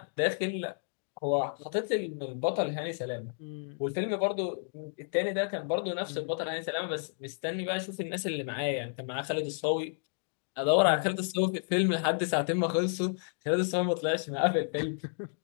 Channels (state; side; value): silent; right; digital silence